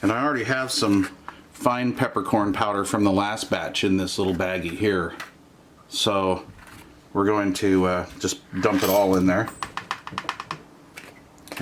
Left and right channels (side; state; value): both; identical; correlation 1.00